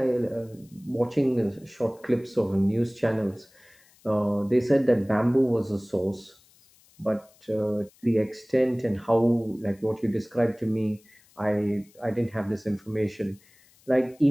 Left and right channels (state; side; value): noise; left; hiss, 30 dB below the sound